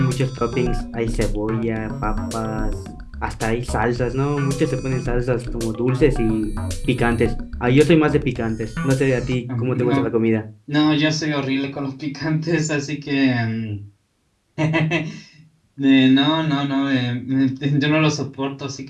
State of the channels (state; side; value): identical; both; correlation 1.00